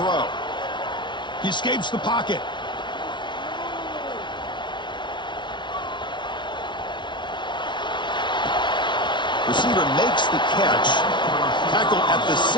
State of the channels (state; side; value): late; right; 0.23 ms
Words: He escapes the pocket. Receiver makes the catch. Tackle at the